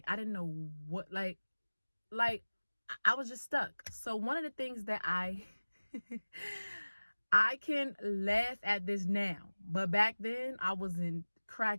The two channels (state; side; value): inverted; both; correlation -1.00